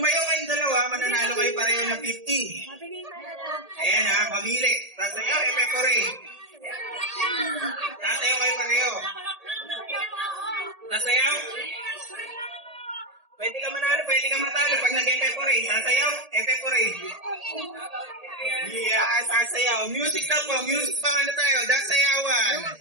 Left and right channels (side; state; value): left; late; 1.8 ms